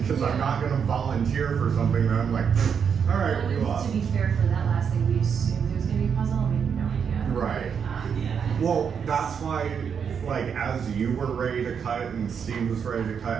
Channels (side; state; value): left; quieter; 7.0 dB